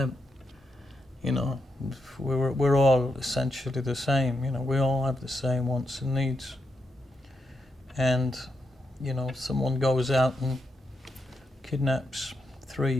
You know, we're all essentially the same, you know, we all have the same wants and needs. And, you know, someone goes out and kidnaps 3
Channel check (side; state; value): both; normal; correlation 0.84